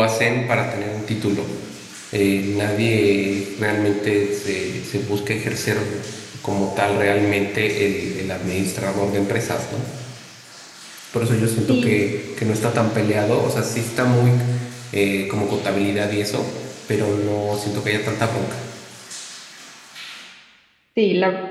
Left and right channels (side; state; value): both; identical; correlation 1.00